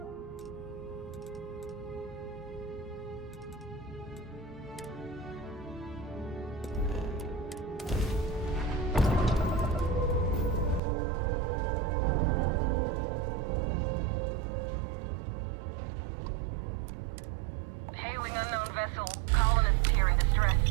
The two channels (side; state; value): left; drops out; at 10.8 s